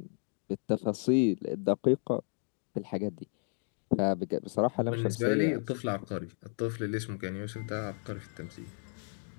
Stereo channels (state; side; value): silent; right; 56 dB below the other